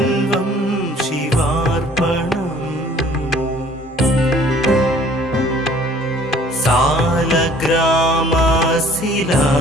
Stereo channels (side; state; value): both; normal; correlation 0.54